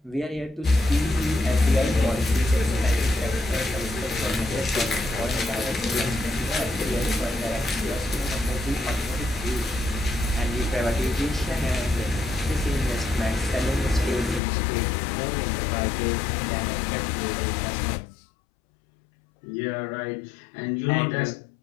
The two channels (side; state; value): right; drops out; at 14.4 s